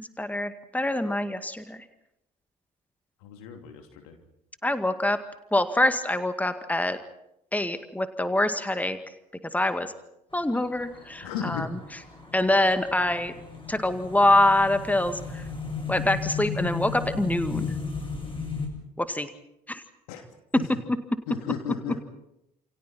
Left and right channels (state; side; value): normal; both; correlation 0.82